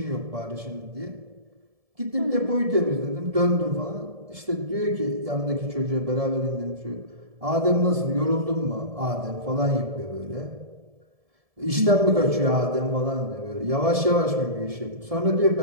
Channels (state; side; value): late; left; 1.7 ms